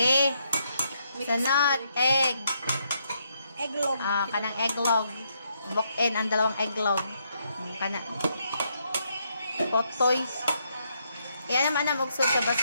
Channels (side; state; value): both; inverted; correlation -0.76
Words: Sunod, egg. Egglog. Kanang egglog. Book-in ang dalawang egglog. Kana. Potoy. Yan naman ang magsud sa